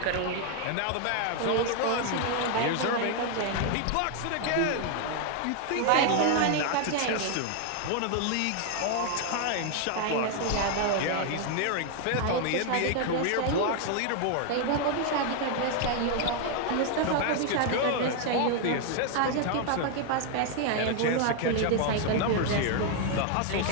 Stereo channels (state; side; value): different; both; correlation 0.00